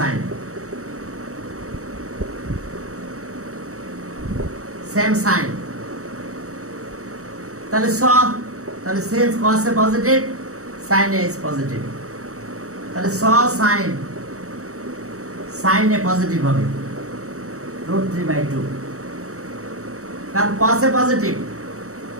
তাহলে since cos A positive, sin A is positive, তাহলে sin A positive হবে √3/2, কারণ cos A positive,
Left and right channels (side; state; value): left; late; 0.65 ms